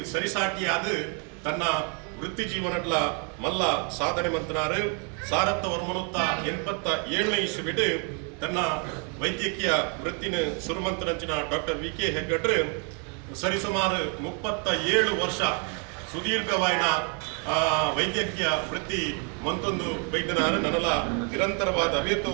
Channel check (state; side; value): quieter; left; 37.9 dB